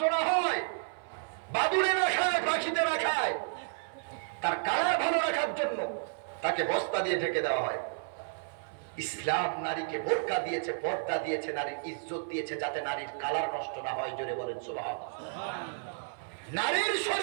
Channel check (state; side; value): silent; left; 56 dB below the other